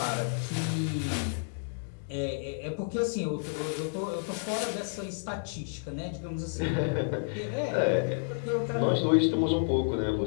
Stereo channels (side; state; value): right; silent; digital silence